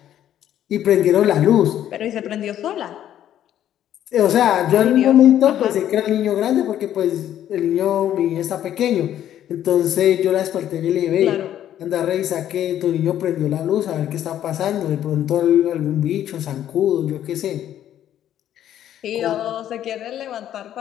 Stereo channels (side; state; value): right; quieter; 11.2 dB